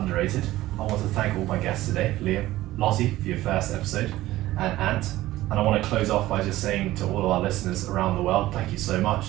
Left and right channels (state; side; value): quieter; left; 16.2 dB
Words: I want to thank all my guests today, Liam, Lotte for your first episode, and Ant. And I want to close off by just saying to all of our listeners around the world, thank you so much